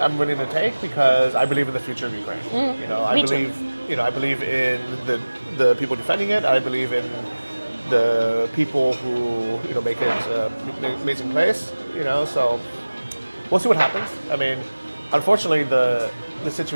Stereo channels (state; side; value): inverted; both; correlation -1.00